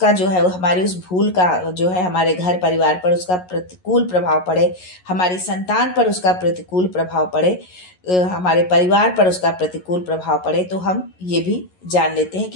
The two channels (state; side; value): late; right; 11 ms